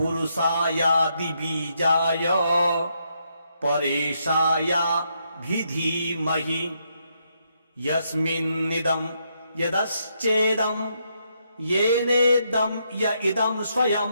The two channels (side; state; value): both; inverted; correlation -0.77